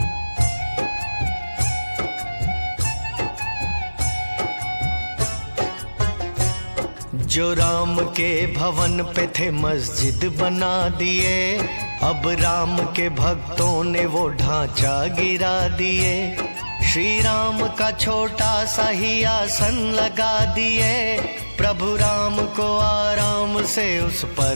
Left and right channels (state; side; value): inverted; both; correlation -1.00